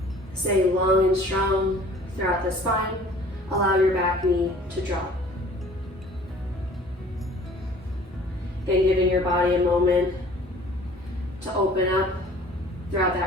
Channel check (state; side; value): normal; both; correlation 0.50